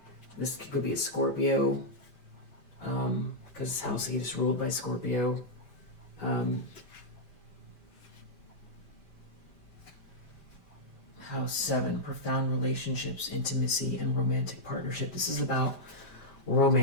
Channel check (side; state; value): right; late; 5.1 ms